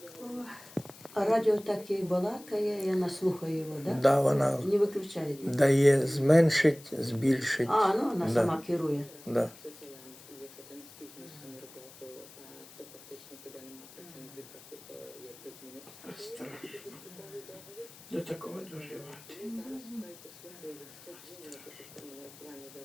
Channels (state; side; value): noise; left; hiss, 20 dB below the sound